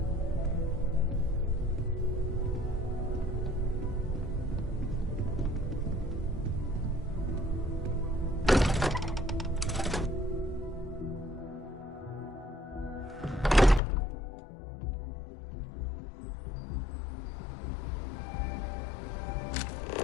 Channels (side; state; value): right; drops out; at 13.8 s